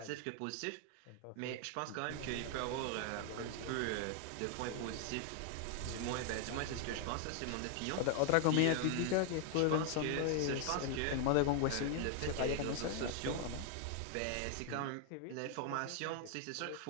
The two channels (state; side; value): different; both; correlation 0.00